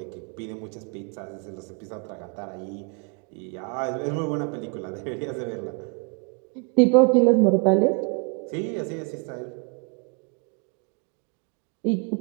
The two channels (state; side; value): quieter; left; 35.5 dB